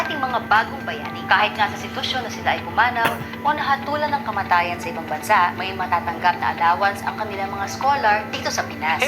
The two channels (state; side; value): identical; both; correlation 1.00